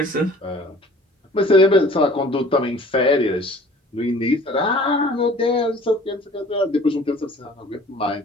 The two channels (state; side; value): normal; both; correlation 0.50